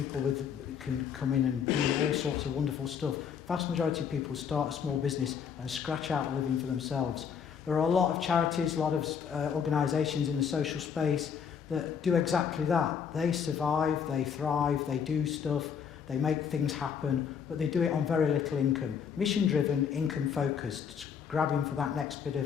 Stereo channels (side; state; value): right; quieter; 7.2 dB